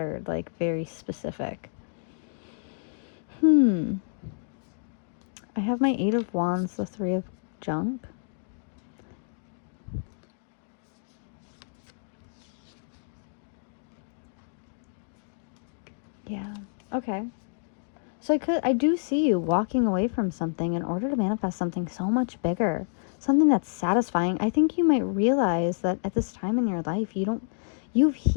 like, very specific. I have my 8 of Wands, the 3 of Junk. Yeah, okay. So I do see you walking away from something in order to manifest something so much bigger. Something that's satisfying. I think you might realize that at this time in your life, you've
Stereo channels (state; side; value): silent; right; digital silence